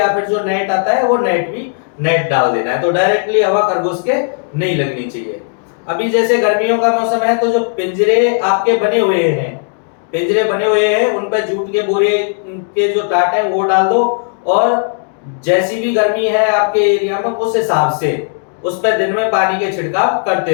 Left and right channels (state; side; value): silent; right; digital silence